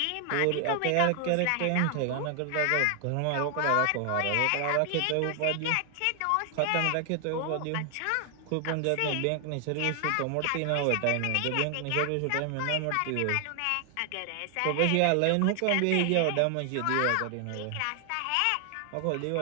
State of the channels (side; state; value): both; different; correlation 0.00